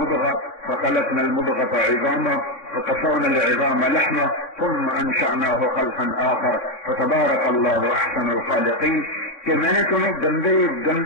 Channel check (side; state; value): right; late; 3.6 ms